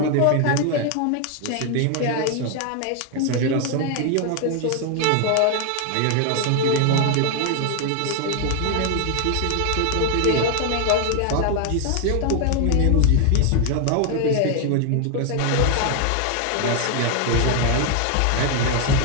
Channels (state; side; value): different; both; correlation 0.01